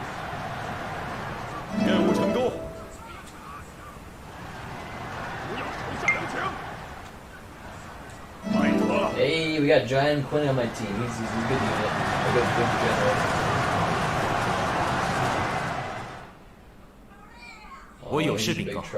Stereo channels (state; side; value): identical; both; correlation 1.00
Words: 任务成功。不要手下留情。拜托了。 Hey, we got Giant Quinn on my team. He's a good unit. A good general. Oh, he's in big